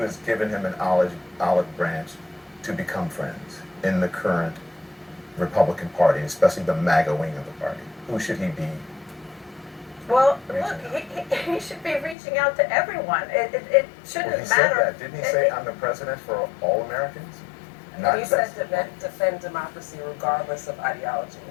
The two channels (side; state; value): right; drops out; at 12.2 s